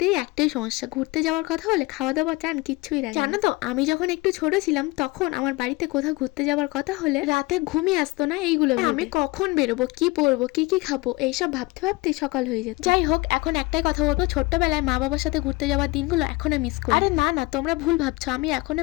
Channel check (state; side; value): quieter; right; 22.9 dB